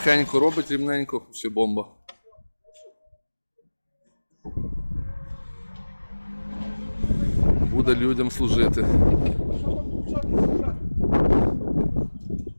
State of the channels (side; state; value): both; inverted; correlation -1.00